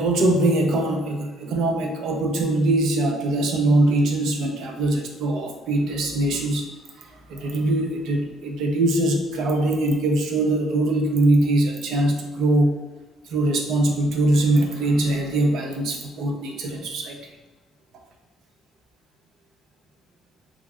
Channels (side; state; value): both; normal; correlation 0.67